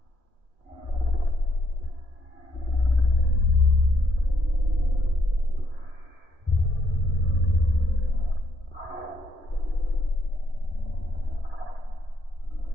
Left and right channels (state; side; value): late; left; 3.1 ms